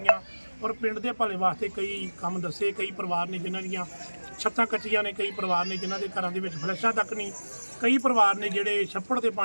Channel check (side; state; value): both; inverted; correlation -1.00